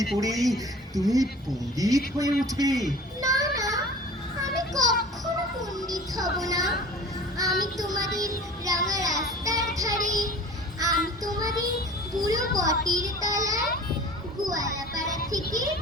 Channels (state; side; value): normal; both; correlation 0.43